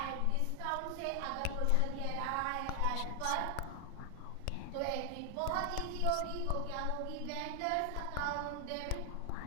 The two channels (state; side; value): different; both; correlation 0.00